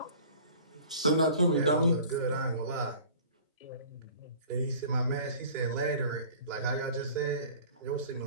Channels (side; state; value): both; inverted; correlation -0.46